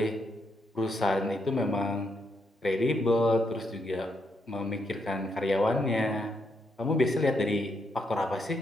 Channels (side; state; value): both; normal; correlation 0.78